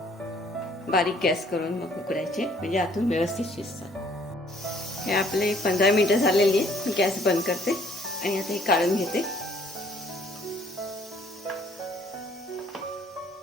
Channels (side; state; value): both; normal; correlation 0.61